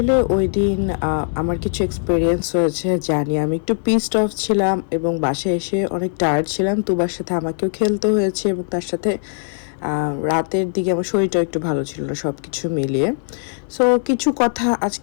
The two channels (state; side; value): silent; right; digital silence